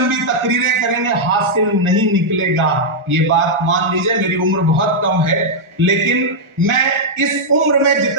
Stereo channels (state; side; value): late; left; 1.4 ms